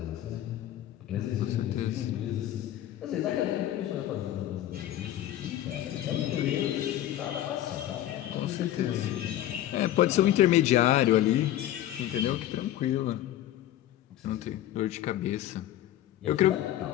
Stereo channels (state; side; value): quieter; right; 12.9 dB